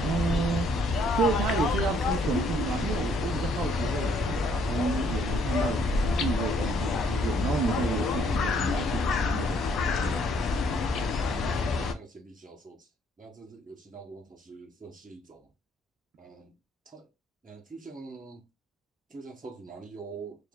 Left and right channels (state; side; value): normal; both; correlation 0.66